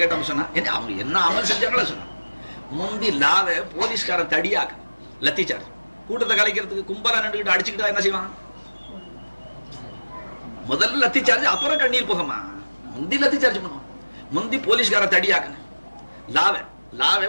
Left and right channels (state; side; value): inverted; both; correlation -1.00